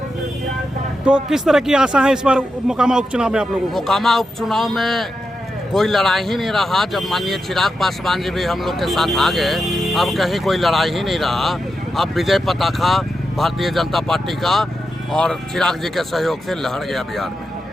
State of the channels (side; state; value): both; normal; correlation 0.88